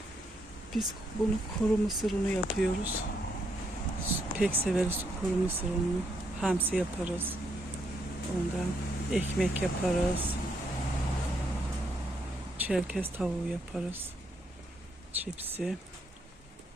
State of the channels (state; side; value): normal; both; correlation 0.75